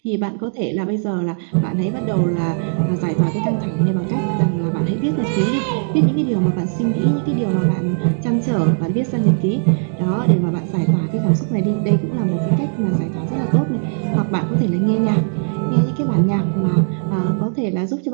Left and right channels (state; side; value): silent; left; digital silence